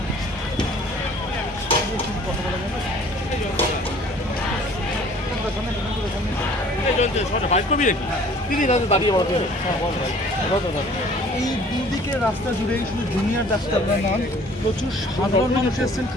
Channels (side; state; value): both; normal; correlation 0.52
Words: এই দুদিকে রাস্তা জুড়েই শুধু জুনিয়র ডাক্তার নন, প্রচুর সাধারণ মানুষ এসছেন,